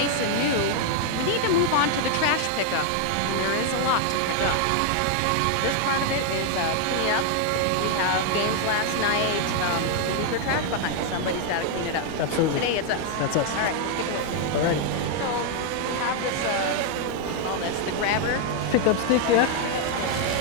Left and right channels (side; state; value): both; different; correlation 0.00